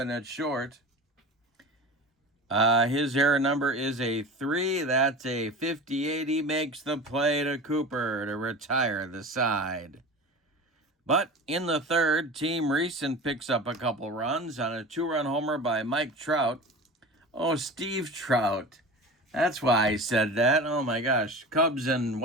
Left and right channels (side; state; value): both; normal; correlation 0.32